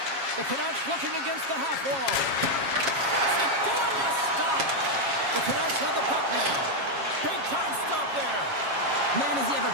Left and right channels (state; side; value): late; left; 7.3 ms